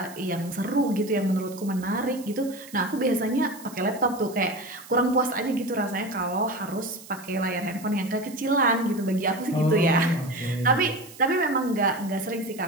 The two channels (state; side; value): noise; right; hiss, 18 dB below the sound